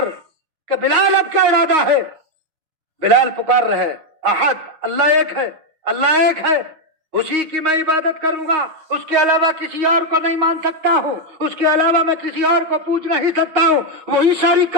کہ بلال اب کیا ارادہ ہے؟ بلال پکار رہے احد، اللہ ایک ہے، اللہ ایک ہے، اسی کی میں عبادت کروں گا، اس کے علاوہ کسی اور کو نہیں مان سکتا ہوں، اس کے علاوہ میں کسی اور کو پوچھ نہیں سکتا ہوں۔ وہی ساری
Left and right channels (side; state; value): left; late; 6.3 ms